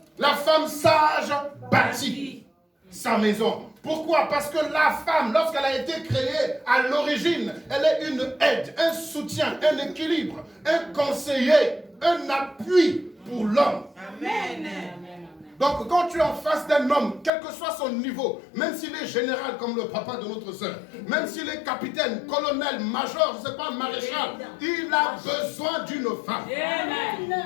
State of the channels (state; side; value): drops out; right; at 17.3 s